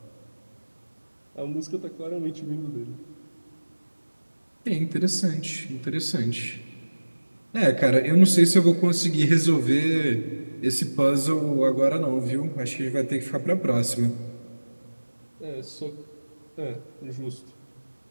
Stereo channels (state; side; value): inverted; both; correlation -1.00